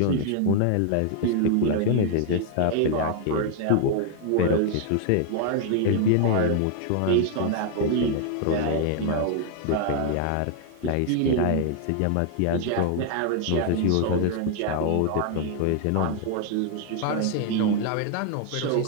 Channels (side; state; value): both; different; correlation 0.00